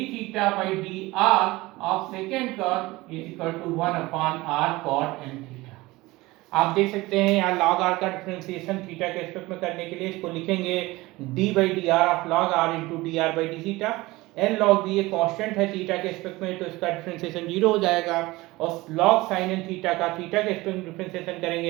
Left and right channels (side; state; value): left; quieter; 20.4 dB